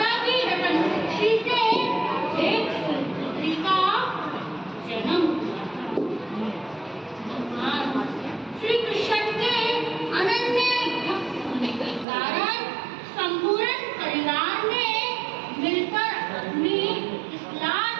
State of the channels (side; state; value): left; drops out; at 12.1 s